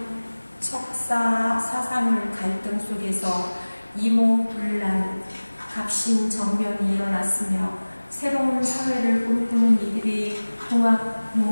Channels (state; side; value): inverted; both; correlation -1.00